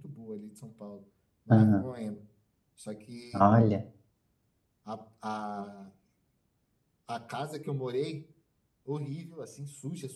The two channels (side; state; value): both; identical; correlation 1.00